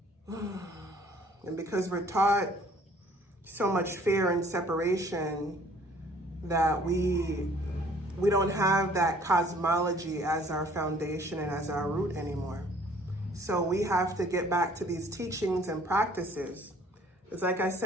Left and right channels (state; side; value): normal; both; correlation 0.56